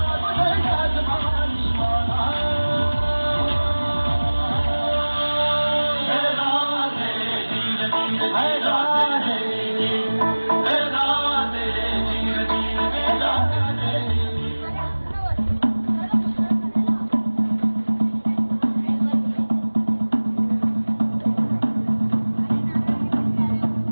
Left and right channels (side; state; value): both; inverted; correlation -1.00